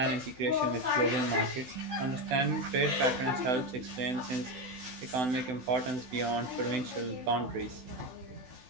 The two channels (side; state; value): left; late; 16 ms